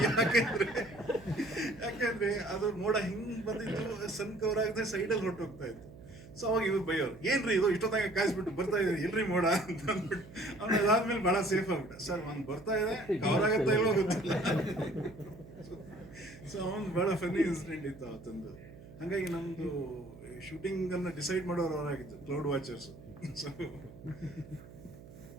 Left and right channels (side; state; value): right; noise; hum, 18 dB below the sound